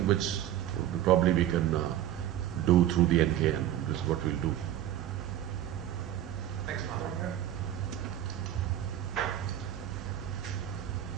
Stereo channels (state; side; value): quieter; left; 11.9 dB